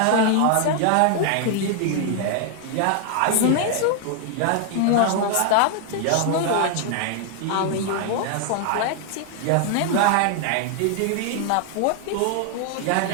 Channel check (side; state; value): both; different; correlation 0.00